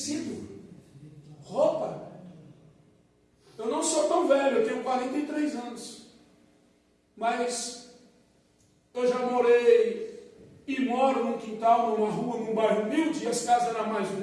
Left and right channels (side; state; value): both; identical; correlation 1.00